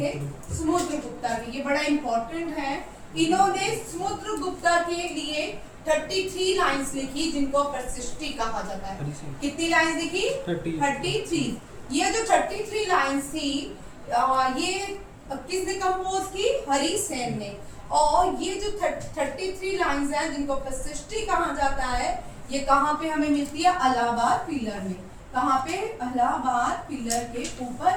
समुद्रगुप्ता के। ये बड़ा इंपॉर्टेंट है। इन्होंने समुद्रगुप्ता के लिए 33 लाइंस लिखी जिनको प्रशिष्टि कहा जाता है। कितनी लाइंस लिखी? 33। ये जो 33 लाइंस थी ये किसने कंपोज की? हरिसेन ने। और ये जो 33 लाइंस हैं जिनको प्रशिष्टि कहा जाता है, ये कहाँ पे हमें मिलती है? इलाहाबाद पिलर में। कहाँ पे? इलाहाबाद पिलर के ऊपर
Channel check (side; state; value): both; identical; correlation 1.00